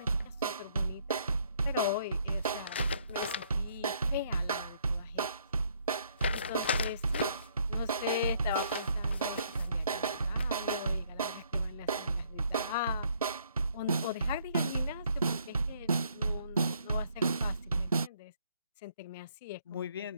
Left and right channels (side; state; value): both; inverted; correlation -0.66